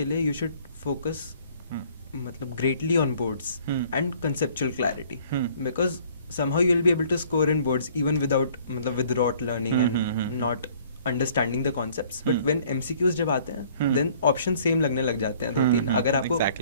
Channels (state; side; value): inverted; both; correlation -0.57